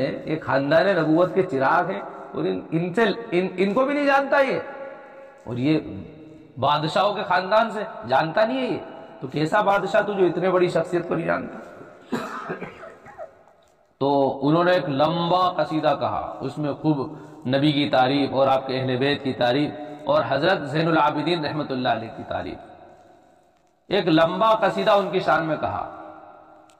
یہ خاندان نبوت کے چراغ ہیں، اور ان کو بھی نہیں جانتا یہ، اور یہ بادشاہوں کے خاندان سے جانتا نہیں ہے یہ، تو کیسا بادشاہ تو جو اتنے بڑی شخصیت کو نہیں جانتا۔ تو انہوں نے ایک لمبا قصیدہ کہا، اس میں خوب نبی کی تعریف اور آپ کے اہل بیت کی تعریف اور حضرت زین العابدین رحمۃ اللہ علیہ کی تعریف، ایک لمبا قصیدہ ان کی شان میں کہا،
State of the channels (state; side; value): identical; both; correlation 1.00